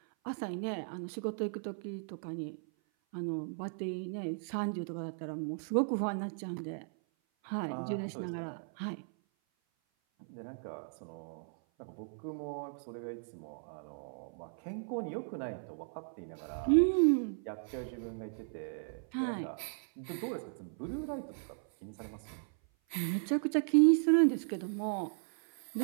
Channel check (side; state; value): left; silent; 54 dB below the other